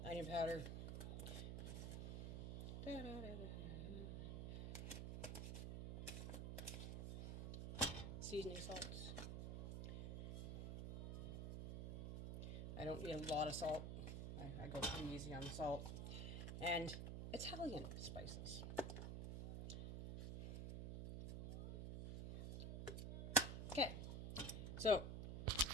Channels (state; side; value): noise; right; hum, 4 dB below the sound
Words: Onion powder. Seasoning salts. I don't need a lot of salt. I go pretty easy on the salt. And Italian spices. Okay, so